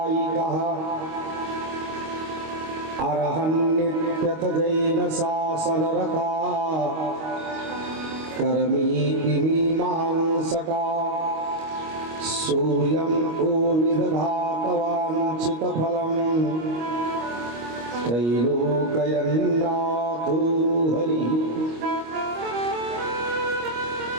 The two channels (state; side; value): late; left; 25 ms